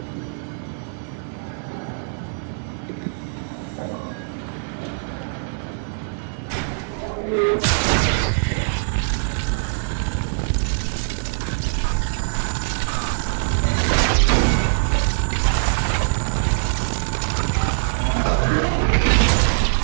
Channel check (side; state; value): left; silent; digital silence